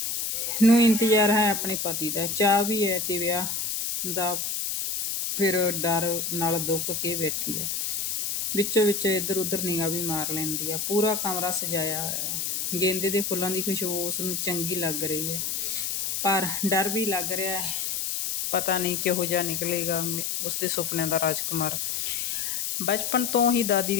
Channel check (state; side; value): noise; left; hiss, 1 dB below the sound